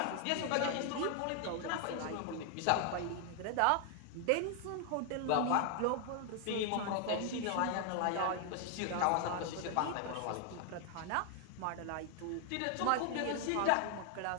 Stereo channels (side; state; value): both; different; correlation 0.00